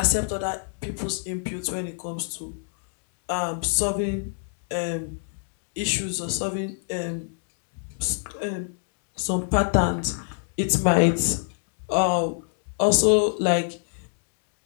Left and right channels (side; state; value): right; silent; digital silence